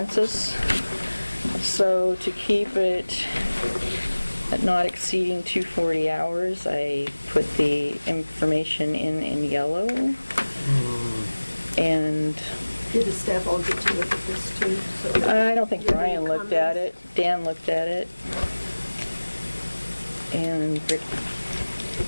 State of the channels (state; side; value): inverted; both; correlation -1.00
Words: So to keep it at not exceeding 240 hours, I put the information in yellow. And Did the staff all get to look at this too? So I don't think you have any Brian looked at it. comments? Dan looked at it. And Rick